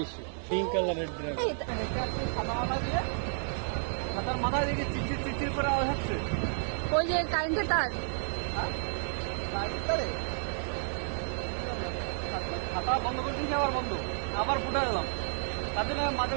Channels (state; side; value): silent; left; digital silence